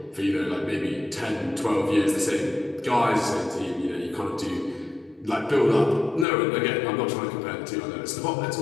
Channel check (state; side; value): drops out; right; at 6.2 s